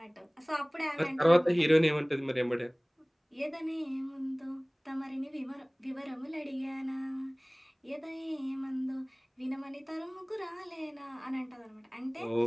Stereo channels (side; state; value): both; identical; correlation 1.00